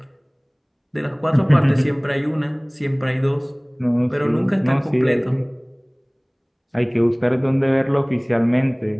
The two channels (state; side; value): identical; both; correlation 1.00